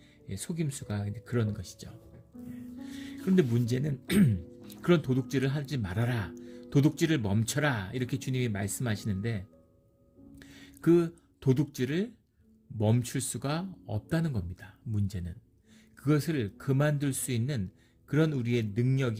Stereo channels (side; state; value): both; identical; correlation 1.00